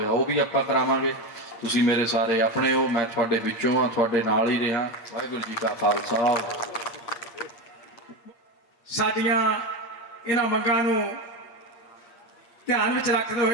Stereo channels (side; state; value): right; late; 8.6 ms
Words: ਉਹ ਵੀ ਆਪਾਂ ਕਰਾਵਾਂਗੇ। ਤੁਸੀਂ ਮੇਰੇ ਸਾਰੇ ਆਪਣੇ ਹੋ, ਮੈਂ ਤੁਹਾਡੇ ਵਿੱਚੋਂ ਹਾਂ, ਤੁਹਾਡੇ ਨਾਲ ਹੀ ਰਿਹਾ। ਵਾਹਿਗੁਰੂ ਜੀ ਕਾ ਖਾਲਸਾ। ਸਾਡੀਆਂ ਇਹਨਾਂ ਮੰਗਾਂ ਨੂੰ ਧਿਆਨ ਵਿੱਚ ਰੱਖਦੇ